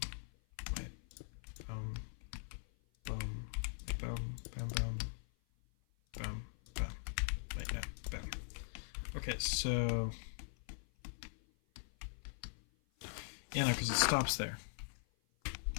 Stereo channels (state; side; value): silent; right; 50 dB below the other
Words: Wait. Boom, boom, boom, boom, boom. Boom, boom. Wait, no, boom. Okay, so yeah, no, because it stops there.